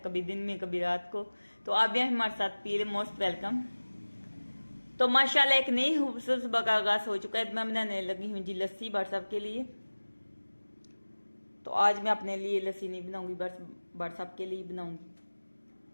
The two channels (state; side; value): inverted; both; correlation -1.00